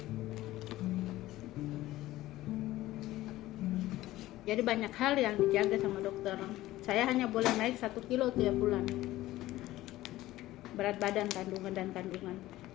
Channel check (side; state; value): right; quieter; 16.2 dB